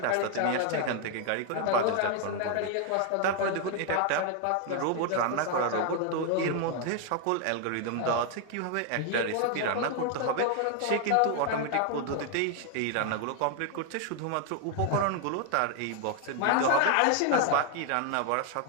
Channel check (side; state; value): both; different; correlation 0.00